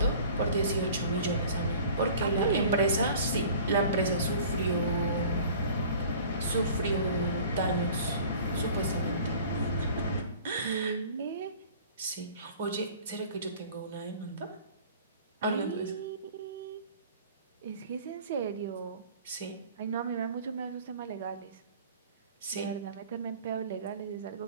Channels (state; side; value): inverted; both; correlation -0.46